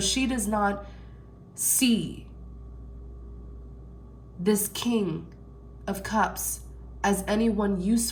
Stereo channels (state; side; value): identical; both; correlation 1.00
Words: does not see this King of Cups as anyone